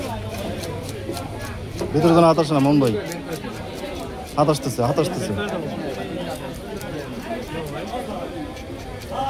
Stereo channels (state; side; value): identical; both; correlation 1.00